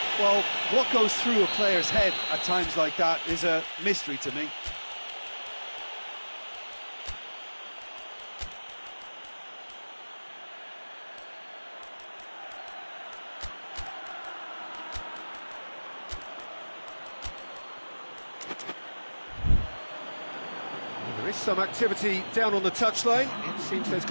Well, what goes through a player's head at times like that is a mystery to me. There is some activity down on the touchline. It seems there's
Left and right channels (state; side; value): inverted; both; correlation -1.00